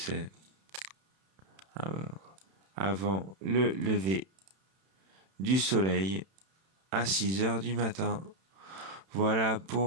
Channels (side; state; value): left; late; 31 ms